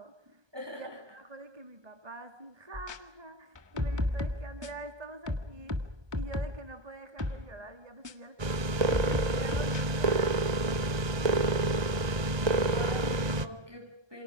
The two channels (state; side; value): late; left; 1.2 ms